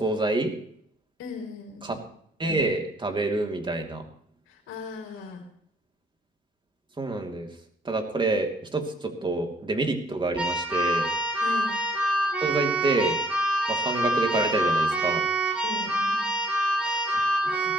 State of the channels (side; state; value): both; normal; correlation 0.61